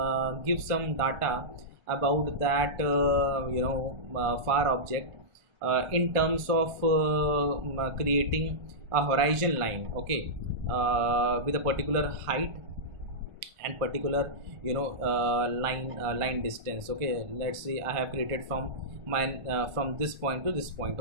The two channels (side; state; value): left; late; 1.5 ms